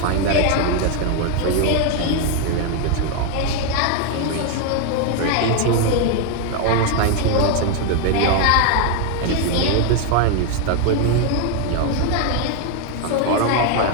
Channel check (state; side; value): different; both; correlation 0.01